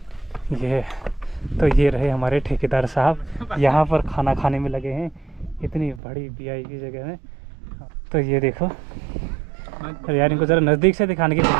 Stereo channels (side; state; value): left; drops out; at 6.0 s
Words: ये रहे हमारे ठेकेदार साहब, यहाँ पर खाना खाने में लगे हैं, इतनी बड़ी VIP जगह में। तो ये देखो, और यार इनको ज़रा नज़दीक से दिखाने की